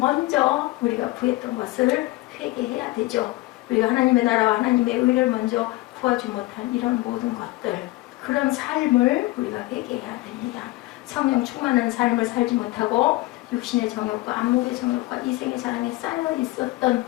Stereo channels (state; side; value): quieter; right; 19.9 dB